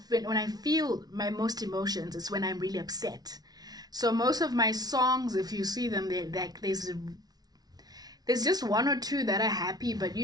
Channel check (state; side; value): late; left; 0.19 ms